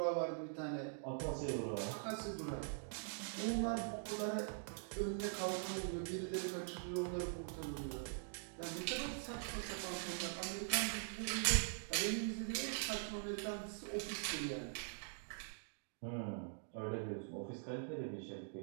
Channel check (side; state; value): left; silent; digital silence